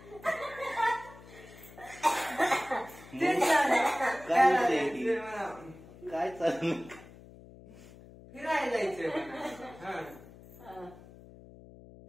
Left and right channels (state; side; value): noise; left; hum, 19 dB below the sound